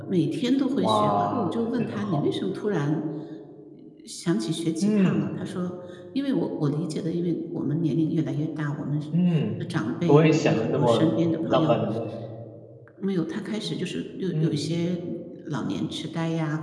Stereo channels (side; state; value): both; identical; correlation 1.00